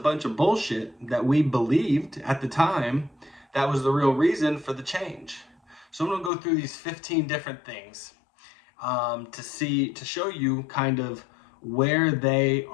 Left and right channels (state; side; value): drops out; right; at 6.3 s